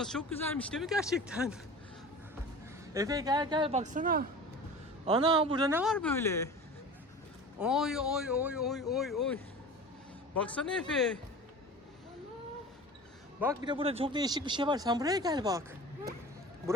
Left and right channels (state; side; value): normal; both; correlation 0.36